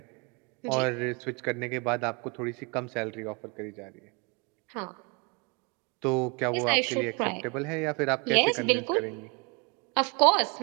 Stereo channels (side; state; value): left; quieter; 31.3 dB